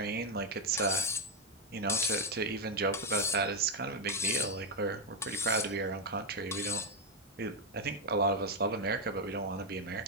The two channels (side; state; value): both; normal; correlation 0.04